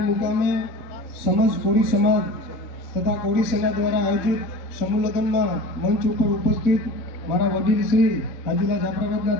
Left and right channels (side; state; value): right; late; 3.7 ms